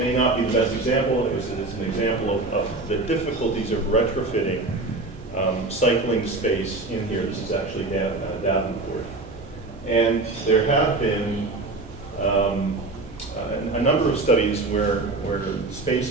not be the best example, it's an example of the difficulties of retrofitting cycling space in here. This is actually Davenport. And there have been a number of studies where space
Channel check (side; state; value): left; quieter; 3.2 dB